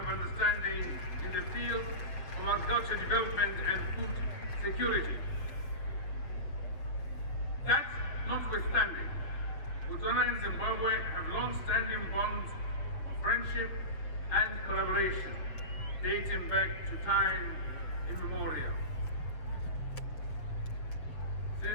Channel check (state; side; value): late; right; 6.9 ms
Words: Understanding in the field of agriculture development and food security. That notwithstanding, Botswana and Zimbabwe have long-standing bonds of friendship and collaboration dating back to time immemorial.